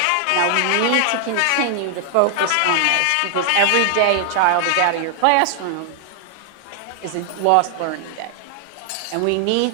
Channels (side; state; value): both; different; correlation 0.00